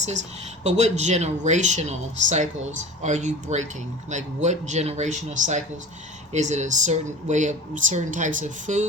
But what generational cycles are you breaking? Like what generational cycles? Is it a certain way of certain types of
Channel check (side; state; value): both; normal; correlation 0.37